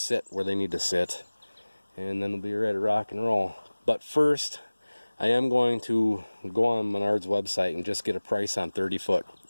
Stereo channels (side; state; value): both; inverted; correlation -1.00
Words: where they need to sit, and then we'll be ready to rock and roll. But first, I am going to go on Menard's website and just get a price on 30-foot